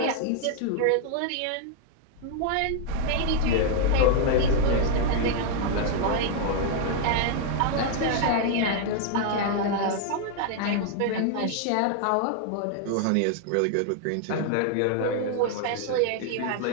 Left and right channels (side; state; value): both; different; correlation 0.00